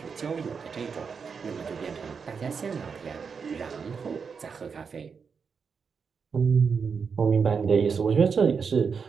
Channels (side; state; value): left; quieter; 5.8 dB